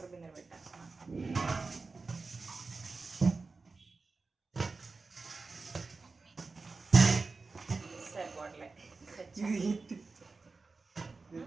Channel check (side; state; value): left; quieter; 4.0 dB